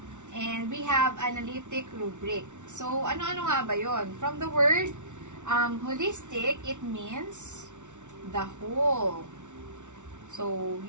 and we have analytic rubric. So, ano-ano nga ba yon? From the word holistic, it means the whole. So,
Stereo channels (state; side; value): late; left; 0.85 ms